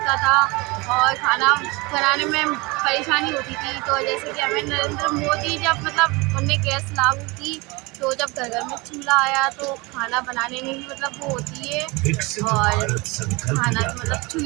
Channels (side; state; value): left; quieter; 25.3 dB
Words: था और खाना बनाने में परेशानी होती थी। तो जैसे कि हमें नरेंद्र मोदी जब उनने गैस लागू की, तो जब घर घर में चूल्हा आया तो खाना बनाने में भी वो होती है और खाना